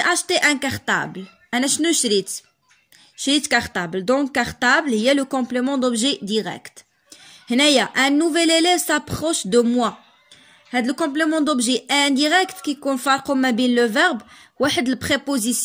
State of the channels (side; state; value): both; identical; correlation 1.00